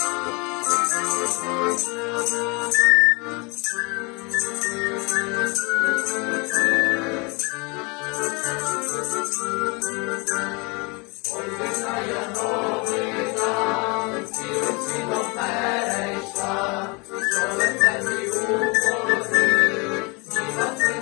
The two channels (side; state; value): right; quieter; 28.7 dB